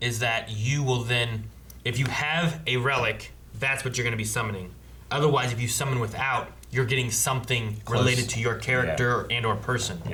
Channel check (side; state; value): both; identical; correlation 1.00